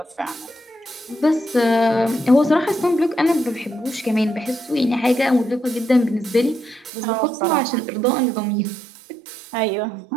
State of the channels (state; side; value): drops out; left; at 6.9 s